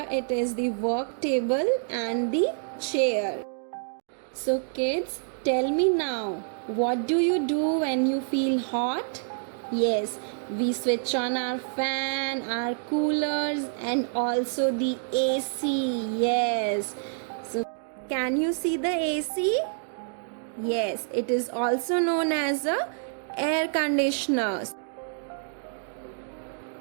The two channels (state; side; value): silent; left; digital silence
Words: it is the work table and the chair. So kids, tell me now, what do you do when you feel hot? Yes, we switch on our fan, our coolers, and also the AC. Yes. So can you see the AC? Yes, it is also known as a air conditioner.